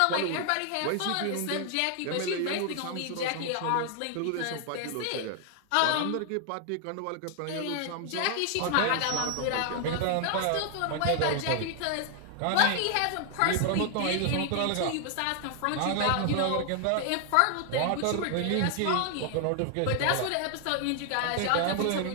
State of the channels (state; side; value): different; both; correlation 0.00